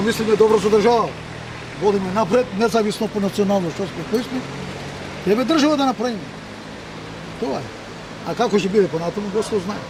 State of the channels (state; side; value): identical; both; correlation 1.00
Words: мислиме добро со држава. Водиме напред, независно по национално што сме, кои сме. Треба држава да направиме. Тоа е. А како ќе биде понатаму, Господ знае.